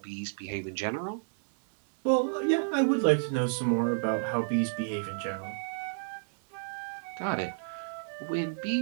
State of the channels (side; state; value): left; silent; 56 dB below the other